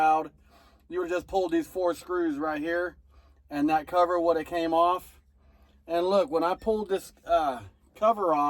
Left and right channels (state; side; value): identical; both; correlation 1.00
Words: You would have just pulled these 4 screws right here, and that cover would have came off. And look, when I pulled this cover